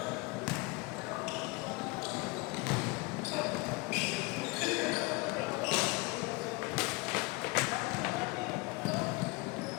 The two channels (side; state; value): right; quieter; 25.8 dB